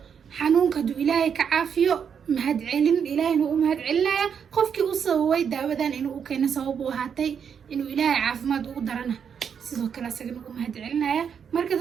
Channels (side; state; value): left; quieter; 7.3 dB